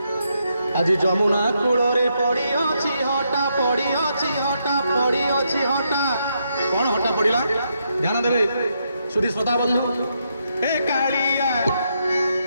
আজি যমুনা কূଳରେ পড়িଅଛି হটা পড়িଅଛି হটা পড়িଅଛି হটা কোন হটা পড়িলা ধ্যান দেবে সুধী শ্রোতা বন্ধু এ কালিয়া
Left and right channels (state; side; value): inverted; both; correlation -0.79